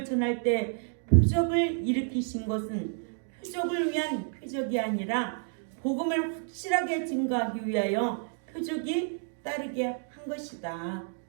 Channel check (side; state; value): left; silent; 58 dB below the other